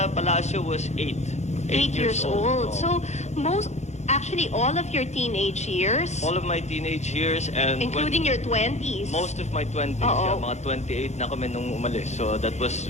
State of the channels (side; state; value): right; late; 0.33 ms